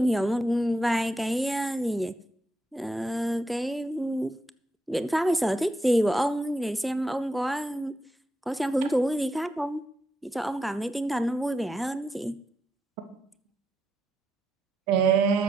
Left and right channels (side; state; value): both; normal; correlation 0.83